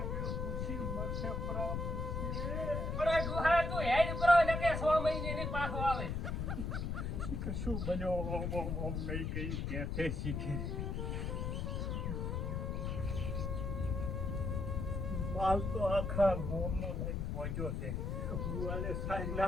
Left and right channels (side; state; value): left; noise; rumble, 1 dB below the sound